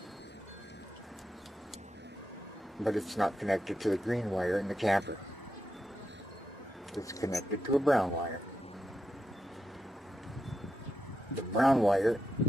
but it's not connected to the green wire in the camper. It's connected to a brown wire. The brown wire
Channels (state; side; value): normal; both; correlation 0.86